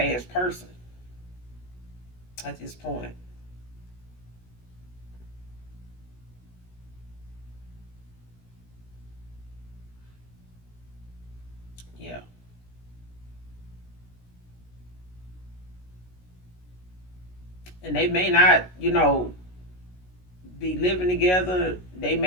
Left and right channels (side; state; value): right; late; 16 ms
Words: person at this point. Yeah. And they may not, be living together. They